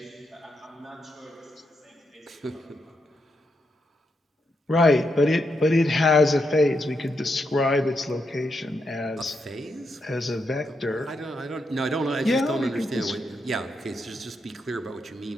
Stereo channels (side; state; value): both; normal; correlation 0.82